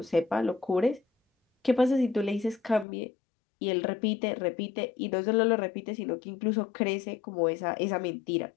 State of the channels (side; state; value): right; drops out; at 2.9 s